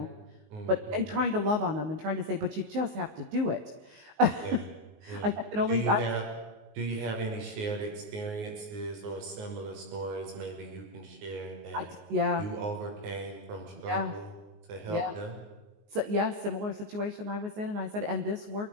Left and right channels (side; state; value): left; late; 19 ms